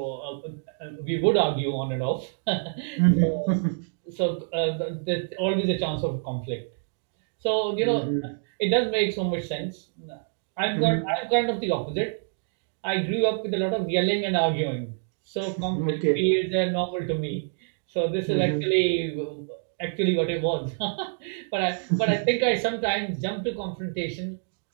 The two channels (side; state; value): left; silent; digital silence